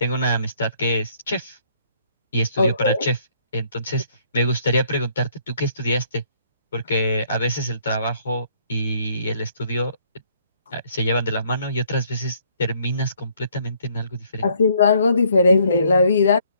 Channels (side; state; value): both; inverted; correlation -0.65